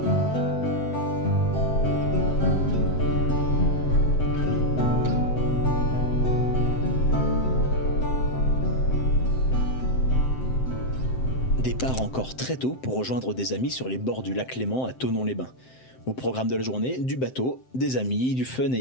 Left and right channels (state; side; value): late; right; 7.8 ms